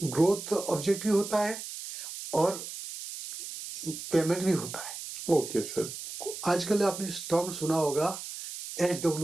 ऑब्जेक्टिव होता है और पेमेंट भी होता है। Okay sir. आजकल आपने टर्म सुना होगा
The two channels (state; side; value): noise; right; hiss, 9 dB below the sound